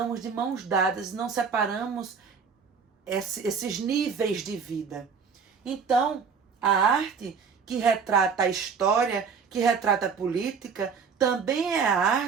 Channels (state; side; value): quieter; left; 5.9 dB